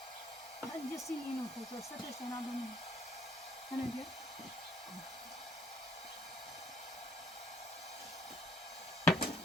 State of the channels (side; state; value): both; normal; correlation 0.64